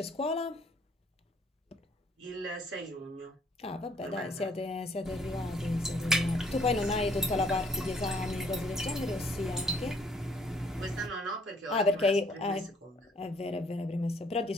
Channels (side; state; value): both; normal; correlation 0.63